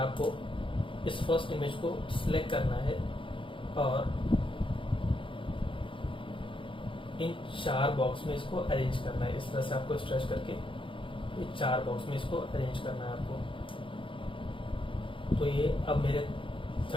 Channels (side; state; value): right; late; 0.25 ms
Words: इस फर्स्ट इमेज को सिलेक्ट करना है और इन 4 बॉक्स में इसको अरेंज करना है। इस तरह से आपको स्ट्रेच करके ये 4 बॉक्स में इसको अरेंज करना है आपको। तो ये अब मेरे